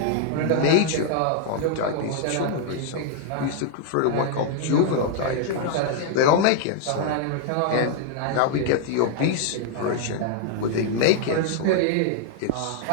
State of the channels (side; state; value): both; different; correlation 0.00